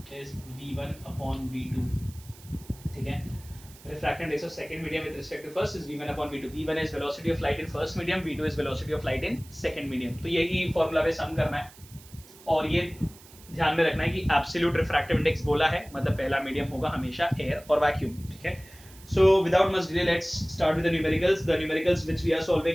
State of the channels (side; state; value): right; noise; hiss, 22 dB below the sound